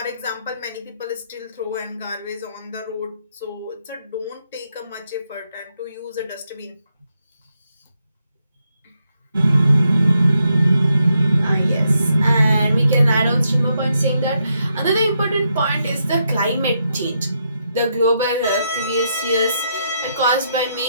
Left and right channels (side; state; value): both; inverted; correlation -0.80